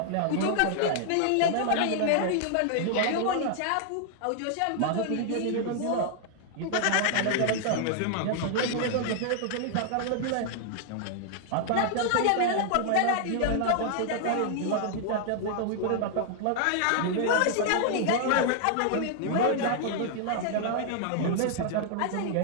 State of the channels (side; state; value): both; different; correlation 0.00